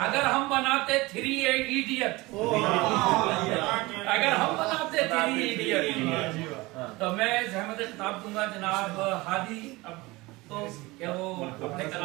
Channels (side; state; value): left; quieter; 21.8 dB